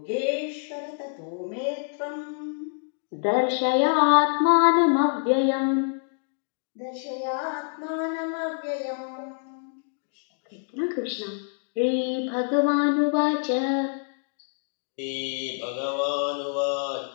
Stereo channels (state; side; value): silent; right; digital silence